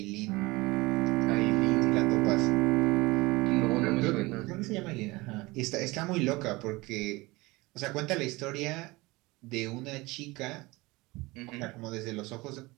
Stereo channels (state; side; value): quieter; left; 22.3 dB